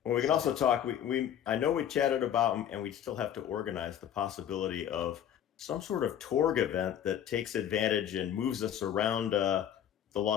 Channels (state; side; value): quieter; right; 9.9 dB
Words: Well, we can So also talk. We I know we chatted about, and we still have to organize the possibility of some sort of Torg event that takes advantage and moves us around the